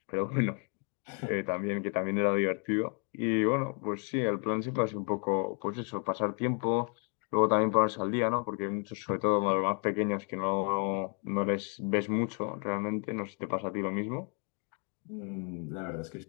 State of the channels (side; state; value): right; quieter; 39.8 dB